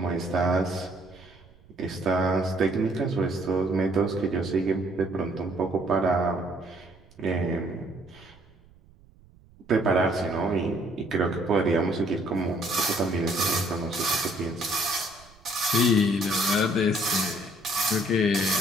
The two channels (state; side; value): noise; right; rumble, 26 dB below the sound